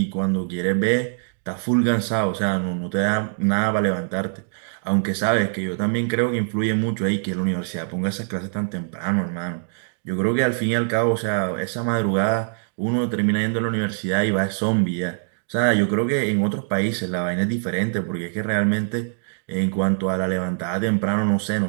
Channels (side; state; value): left; silent; digital silence